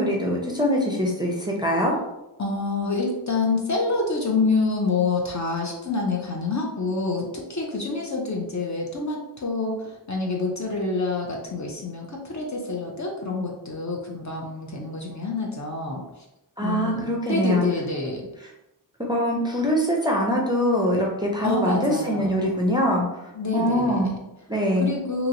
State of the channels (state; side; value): normal; both; correlation 0.18